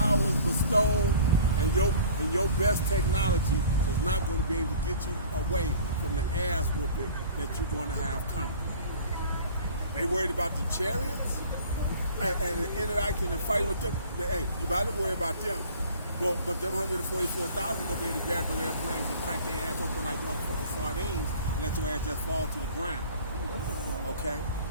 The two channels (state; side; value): inverted; both; correlation -0.46